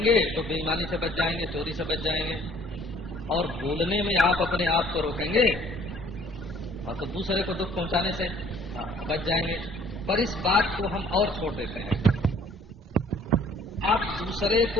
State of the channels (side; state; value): both; normal; correlation 0.57